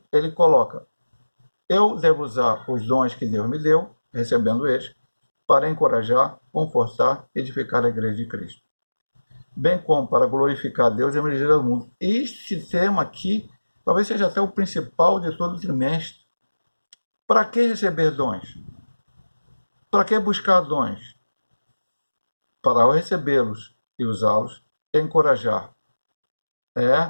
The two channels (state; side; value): inverted; both; correlation -1.00